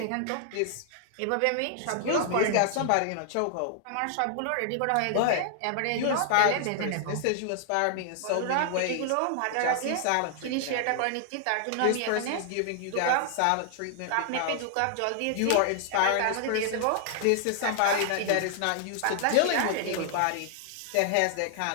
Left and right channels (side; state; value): both; different; correlation 0.00